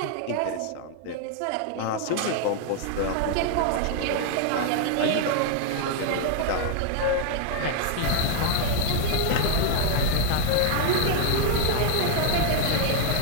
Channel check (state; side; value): different; both; correlation 0.00